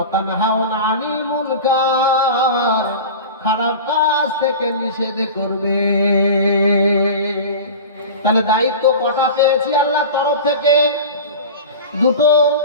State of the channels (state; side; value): inverted; both; correlation -0.32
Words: তানহাউনা আনিল মুনকার, খারাপ কাজ থেকে নিষেধ করবে। তাহলে দায়িত্ব কটা পেয়েছি আল্লাহর তরফ থেকে? দুটো।